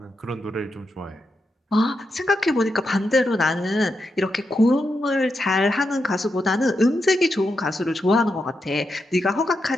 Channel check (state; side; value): normal; both; correlation 0.85